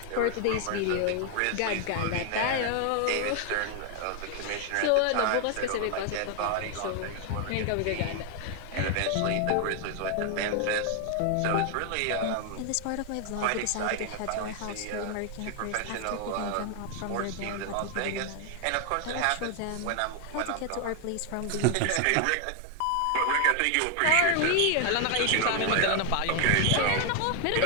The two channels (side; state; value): both; different; correlation 0.00